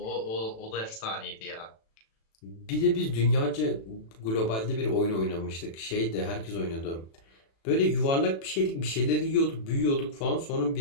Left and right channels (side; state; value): right; late; 36 ms